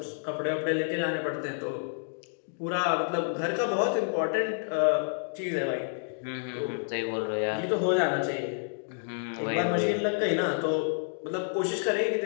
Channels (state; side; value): silent; right; digital silence